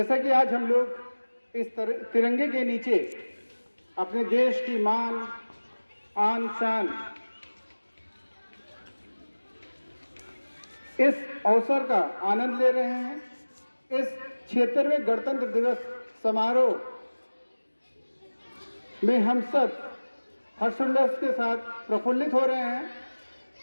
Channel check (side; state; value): both; inverted; correlation -1.00